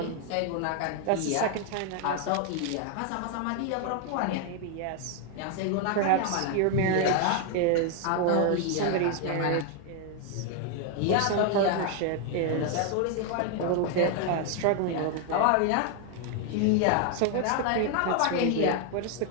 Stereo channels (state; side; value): different; both; correlation 0.00